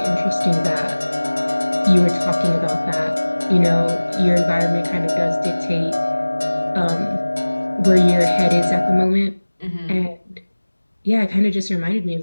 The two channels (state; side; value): inverted; both; correlation -1.00